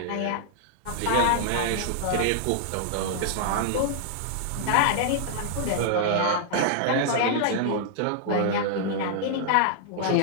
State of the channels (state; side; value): different; both; correlation -0.01